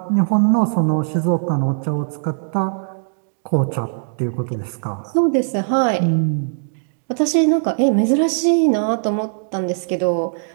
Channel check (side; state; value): left; silent; digital silence